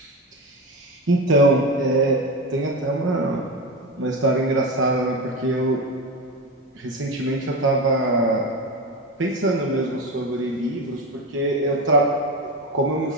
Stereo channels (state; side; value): normal; both; correlation 0.20